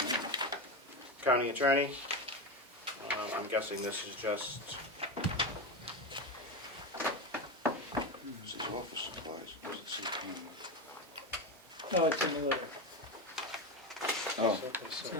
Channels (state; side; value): normal; both; correlation 0.17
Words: county attorney. I'm guessing this is just, This is office supplies. It doesn't say camera. Oh, it's in the letter. Oh. It's